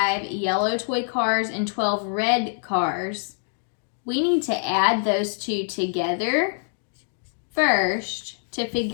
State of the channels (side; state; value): right; silent; digital silence